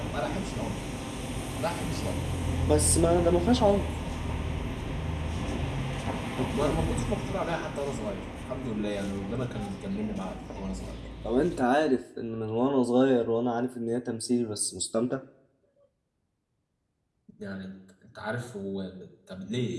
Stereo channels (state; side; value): identical; both; correlation 1.00